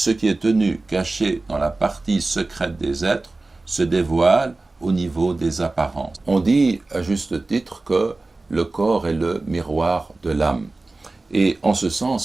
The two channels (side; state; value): left; quieter; 3.3 dB